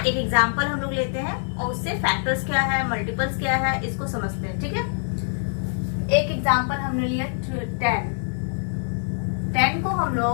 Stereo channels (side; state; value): right; silent; 62 dB below the other